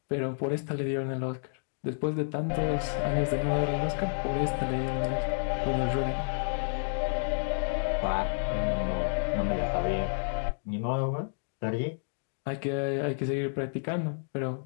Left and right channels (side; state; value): right; silent; digital silence